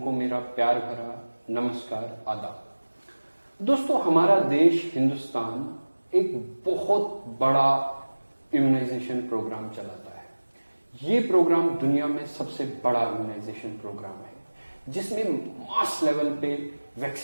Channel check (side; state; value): both; inverted; correlation -1.00